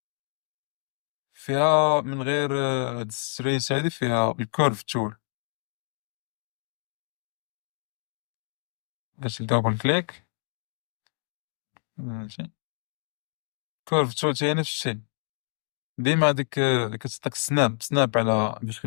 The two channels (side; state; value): right; silent; digital silence